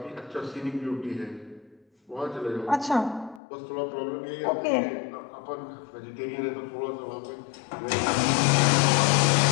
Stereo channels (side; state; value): right; drops out; at 3.4 s